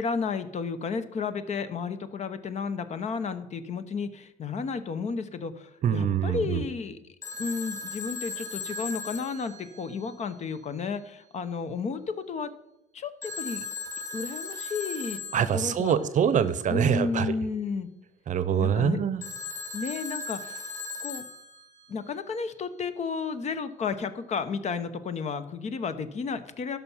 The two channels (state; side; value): normal; both; correlation 0.42